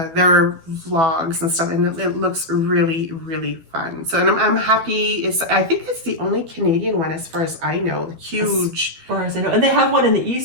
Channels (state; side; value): late; left; 12 ms